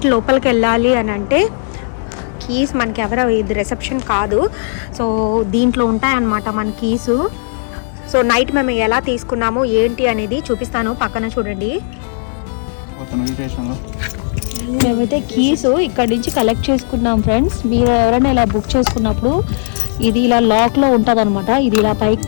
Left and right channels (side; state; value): right; silent; 69 dB below the other